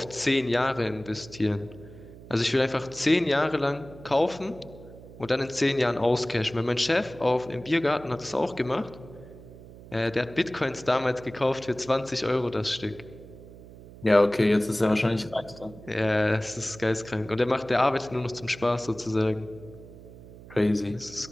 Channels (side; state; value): right; noise; hum, 18 dB below the sound